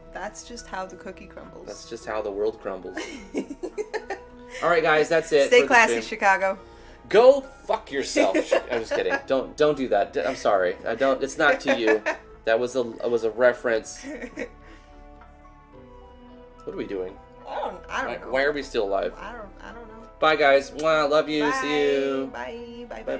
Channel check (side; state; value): both; identical; correlation 1.00